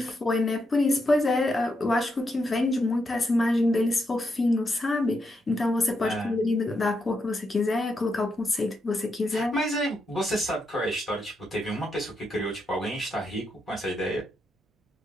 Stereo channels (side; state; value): both; normal; correlation 0.82